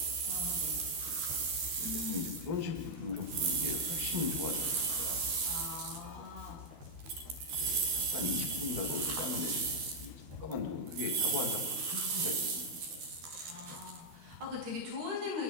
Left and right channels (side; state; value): left; late; 13 ms